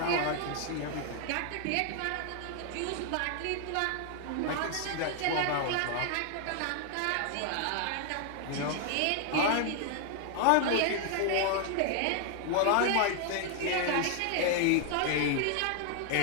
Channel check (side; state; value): both; different; correlation 0.00